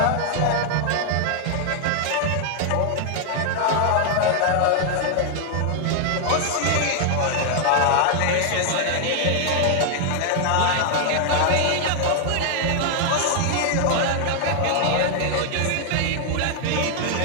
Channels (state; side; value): different; both; correlation 0.00